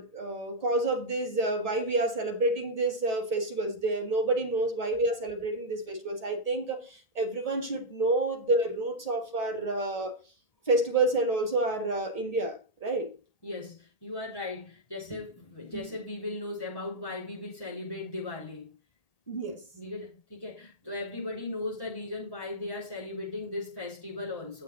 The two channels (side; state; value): right; late; 1.8 ms